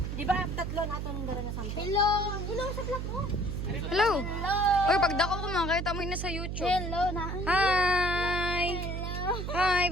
Di ba tatlo na ito nung dala na sample? Hello! Hello sa vlog mo! Hello. Uy, pagdako ko mga kaya tamoy na sa YouTube. Hello na! Hi! Hello! Hi,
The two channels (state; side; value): noise; right; hum, 4 dB below the sound